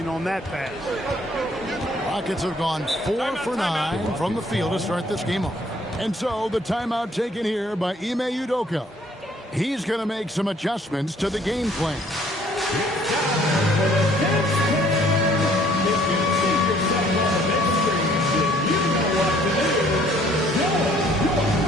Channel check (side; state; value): both; normal; correlation 0.60